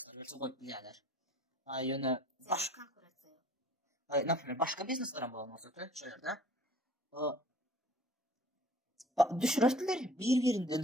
ve çok bilirler. Yönü Başka konkurasyon. Например, başka bizneslerin bulunması da şöyle. Düşürürtüler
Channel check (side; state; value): both; normal; correlation 0.50